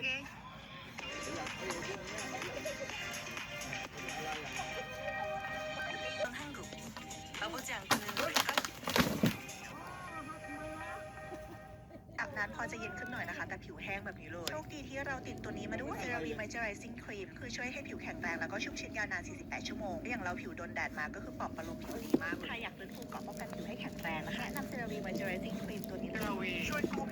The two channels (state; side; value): identical; both; correlation 1.00